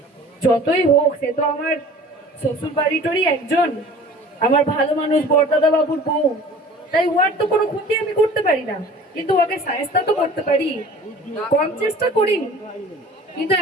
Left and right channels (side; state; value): both; normal; correlation 0.45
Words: যতই হোক, সে তো আমার শ্বশুর বাড়িটারই একজন, আমার ভালো মানুষ, বরদাদা বাবুর বউ, তাই ওর তো কোনো ক্ষতি আমি করতে পারি না, কিন্তু ওকে সায়স্তা তো করতে পারি। কম চেষ্টা করিনি, কিন্তু